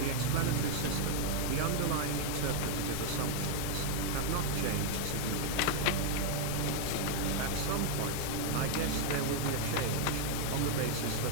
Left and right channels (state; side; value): different; both; correlation 0.00